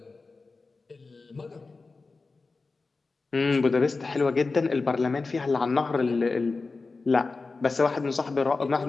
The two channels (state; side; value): quieter; right; 3.9 dB